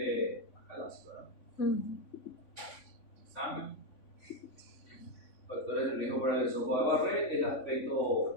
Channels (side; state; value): right; late; 3.5 ms